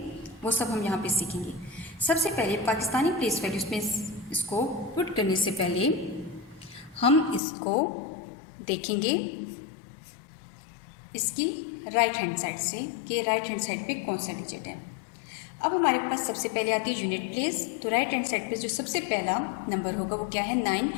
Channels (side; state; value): right; drops out; at 7.4 s